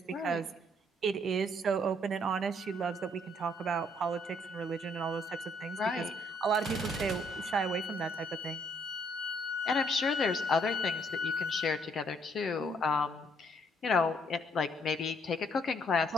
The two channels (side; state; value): both; normal; correlation 0.67